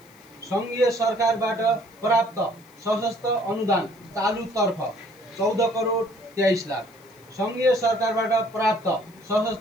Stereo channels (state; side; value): noise; left; hiss, 29 dB below the sound